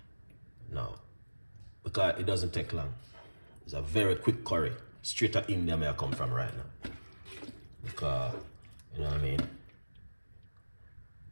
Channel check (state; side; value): inverted; both; correlation -1.00